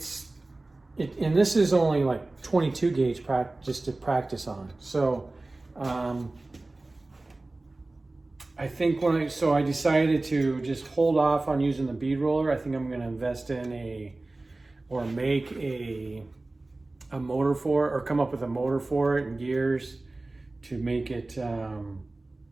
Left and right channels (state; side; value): quieter; left; 3.0 dB